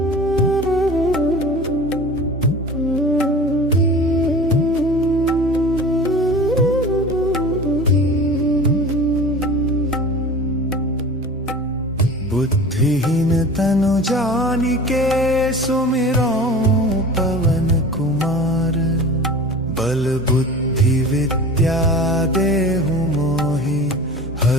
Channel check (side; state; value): both; normal; correlation 0.38